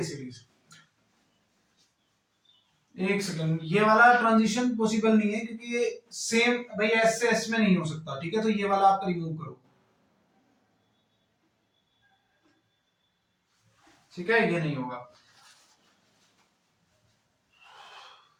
सीरीज। एक सेकंड, ये वाला ट्रांजिशन पॉसिबल नहीं है क्योंकि ये सेम भाई एस से एस में नहीं हो सकता, ठीक है, तो ये वाला आप रिमूव करो, ठीक है, ये नहीं होगा।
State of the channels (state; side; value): identical; both; correlation 1.00